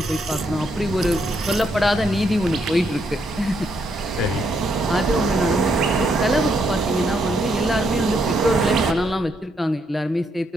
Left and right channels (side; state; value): both; normal; correlation 0.76